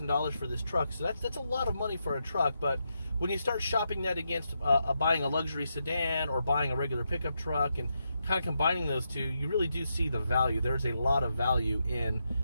for this truck. So that's a lot of money for a truck, but when you start shopping that against buying a luxury sedan or buying a regular pickup truck and kind of combining those two, you really do see the value. There's a lot of value in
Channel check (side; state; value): both; inverted; correlation -0.83